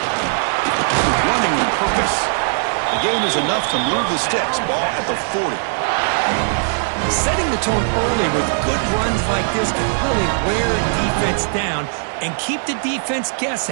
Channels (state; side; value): silent; left; 60 dB below the other